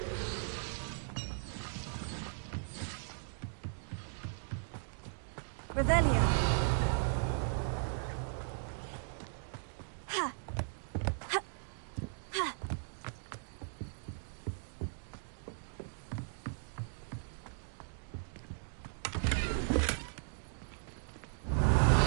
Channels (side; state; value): left; silent; digital silence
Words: Revelio. Ha. Ha. Ha.